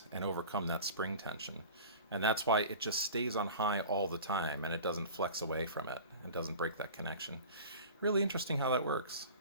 and overcome that spring tension. And that's why it just stays on high all the time and it doesn't flex away from it and doesn't break that connection. Really interesting how that works.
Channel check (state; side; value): inverted; both; correlation -0.38